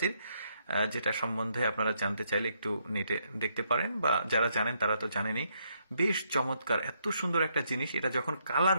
যেটা সম্বন্ধে আপনারা জানতে চাইলে একটু নেটে দেখতে পারেন, বা যারা জানেন তারা তো জানেনই। বেশ চমৎকার, এত সুন্দর একটা জিনিস। এটা যখন কালার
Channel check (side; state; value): both; inverted; correlation -0.75